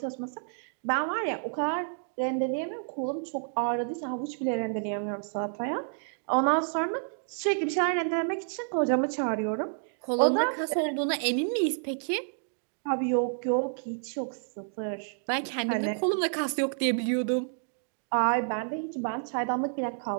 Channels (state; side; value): silent; left; digital silence